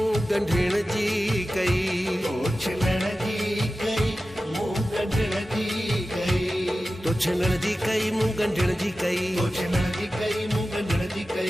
गंढिण जी कई छिनण जी कई मुंह गंढिण जी कई तो छिनण जी कई मुंह गंढिण जी कई छिनण जी कई मुंह गंढिण जी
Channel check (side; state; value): both; normal; correlation 0.94